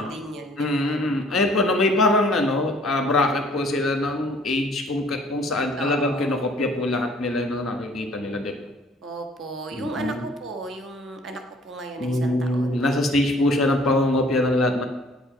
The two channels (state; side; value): normal; both; correlation 0.56